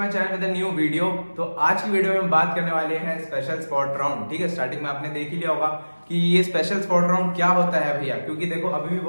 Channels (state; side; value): inverted; both; correlation -1.00